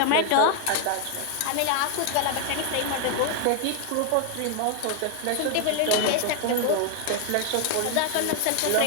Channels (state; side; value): different; both; correlation 0.01